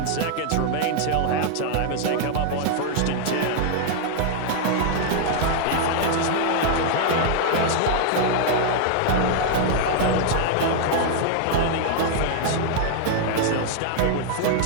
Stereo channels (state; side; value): different; both; correlation 0.00